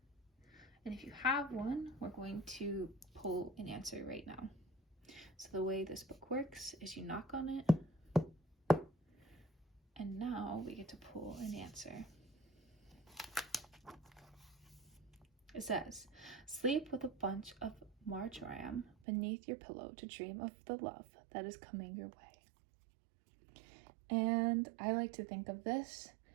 And if you have one, we're going to pull an answer right now. So the way this book works is you knock on it, and now we get to pull an answer. It says, sleep with a bunch of marjoram beneath your pillow to dream of the love that is coming your way. And I like to think of this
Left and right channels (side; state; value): left; drops out; at 18.9 s